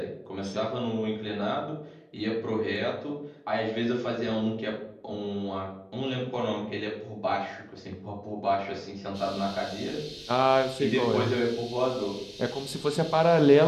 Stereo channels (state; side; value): identical; both; correlation 1.00